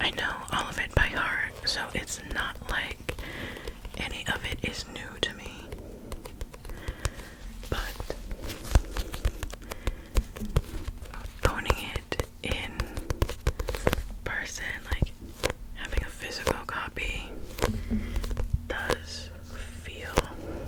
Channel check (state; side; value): identical; both; correlation 1.00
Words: I know all of it by heart, so it's not like any of it is new to me. But owning it in person, having a physical copy, does feel